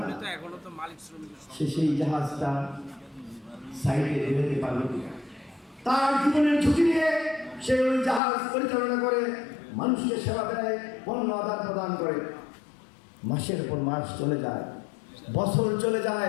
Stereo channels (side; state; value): right; drops out; at 8.2 s